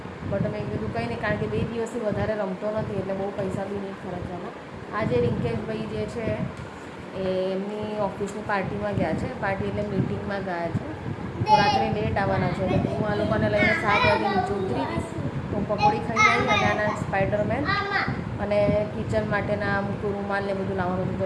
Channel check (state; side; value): identical; both; correlation 1.00